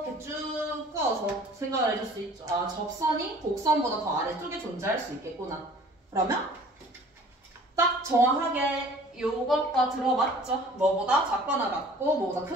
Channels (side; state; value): both; normal; correlation 0.50